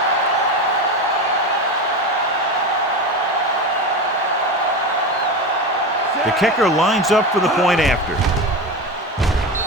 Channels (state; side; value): normal; both; correlation 0.22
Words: The kicker lines up for the point after.